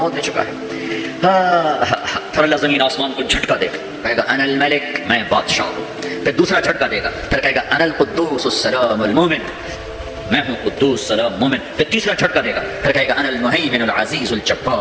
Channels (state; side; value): identical; both; correlation 1.00